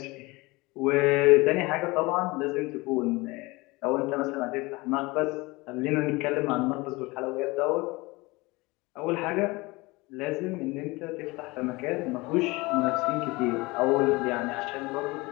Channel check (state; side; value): quieter; right; 23.2 dB